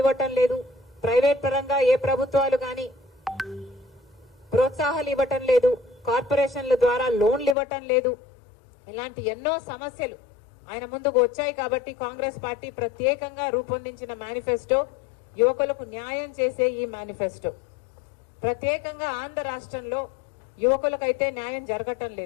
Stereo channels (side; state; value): right; drops out; at 7.6 s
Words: ఇవ్వటం లేదు, ప్రైవేట్ పరంగా ఏ ప్రభుత్వాలు గాని ప్రోత్సాహాలు ఇవ్వటం లేదు, కార్పొరేషన్ల ద్వారా లోన్లు ఇవ్వటం లేదు, ఇలాంటి ఎన్నో సమస్యలు ఆయన ముందుకు వచ్చాయి. కాబట్టి కాంగ్రెస్ పార్టీ ప్రత్యేకంగా రూపొందించిన మేనిఫెస్టో యువకులకు న్యాయం చేసే ఈ మేనిఫెస్టో. ప్రత్యేకంగా ఆంధ్ర రాష్ట్రంలో యువకులకైతే న్యాయం జరగటం